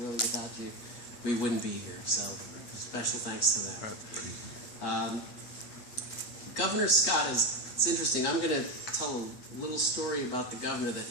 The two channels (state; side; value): late; right; 8.3 ms